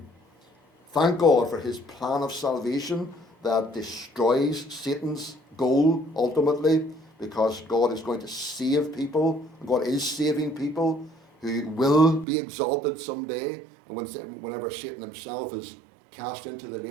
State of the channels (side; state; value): left; drops out; at 12.2 s